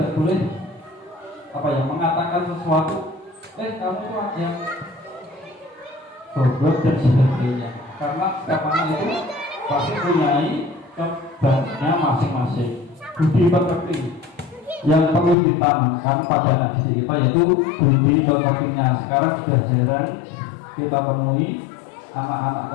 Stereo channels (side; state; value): right; drops out; at 15.4 s